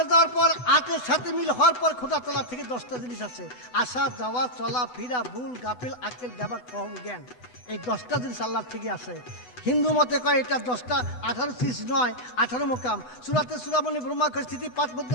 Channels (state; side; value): late; right; 7.9 ms